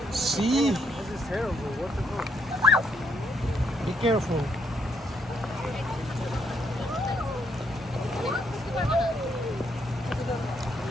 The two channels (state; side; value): normal; both; correlation 0.73